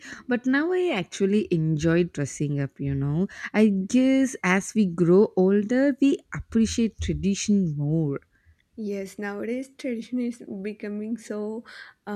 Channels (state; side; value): identical; both; correlation 1.00